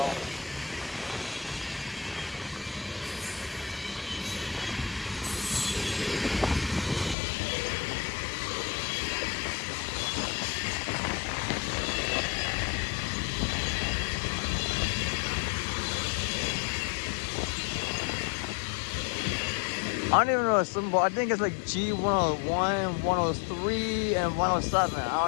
I don't even know the symbol. I think it's like G101, 103, and 107. I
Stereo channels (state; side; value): drops out; right; at 7.2 s